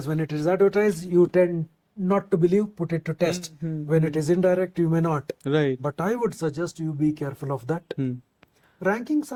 when it is advertised, you tend not to believe, put it to test. When it is indirect, you may not. Right. But I would suggest you be careful of that. Rankings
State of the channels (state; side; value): identical; both; correlation 1.00